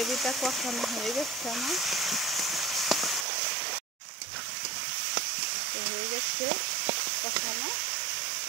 কষানো হয়ে গেছে আমার, তো হয়ে গেছে কষানো।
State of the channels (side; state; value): left; drops out; at 3.2 s